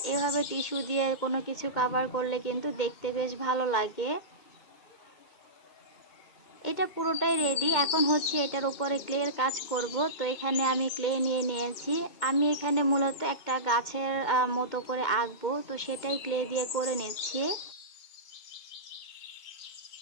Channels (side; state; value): right; late; 2.1 ms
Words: এভাবে টিস্যু দিয়ে কোনো কিছু কভার করলে কিন্তু দেখতে বেশ ভালো লাগে। এটা পুরোটাই রেডি। এখন হচ্ছে এটার উপরে ক্লের কাজ করব। তো এখানে আমি ক্লে নিয়ে নিয়েছি। আমি এখানে মূলত একটা গাছের মতো করে আঁকবো, তো সেটাই ক্লে দিয়ে করে নিচ্ছি।